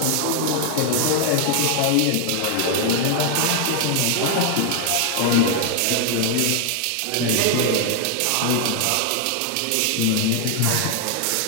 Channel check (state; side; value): different; both; correlation 0.00